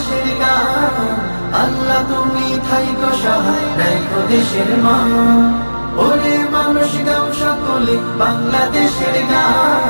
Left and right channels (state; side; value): inverted; both; correlation -1.00